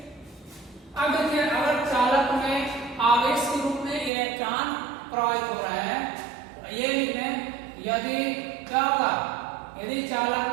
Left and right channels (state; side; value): drops out; left; at 4.1 s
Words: अब देखिए, अगर चालक में आवेश के रूप में इलेक्ट्रॉन प्रवाहित हो रहे हैं, ये लिखें, यदि क्या होगा, यदि चालक